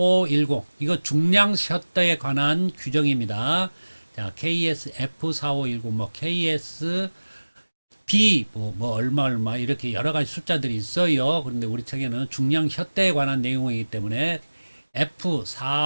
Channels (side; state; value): both; inverted; correlation -1.00